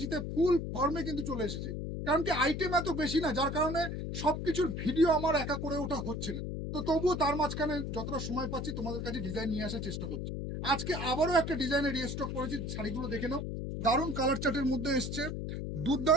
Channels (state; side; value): noise; left; hum, 4 dB below the sound